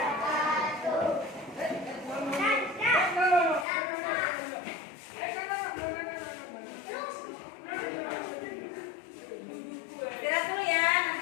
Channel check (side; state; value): right; drops out; at 3.7 s